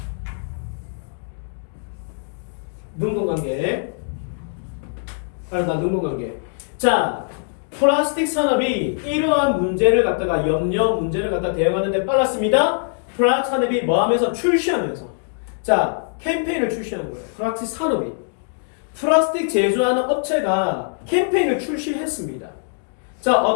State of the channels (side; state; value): right; silent; digital silence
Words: 능동관계. 능동관계. 자, 플라스틱 산업이 이러한 문제를 갖다가 문제를 갖다 대응하는데 빨랐습니다. 플라스틱 산업이 뭐 하면서 출시하면서. 자, 캠페인을 출시하는 거예요. 플라스틱 산업이. 플라스틱 제조하는 업체가 캠페인을 출시했습니다. 자,